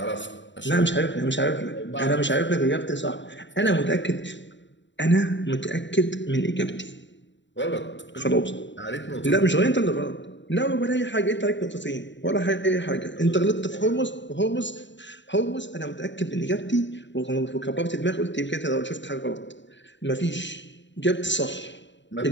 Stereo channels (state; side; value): late; right; 0.53 ms